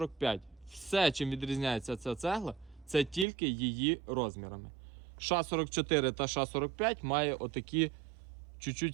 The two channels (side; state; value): left; drops out; at 3.2 s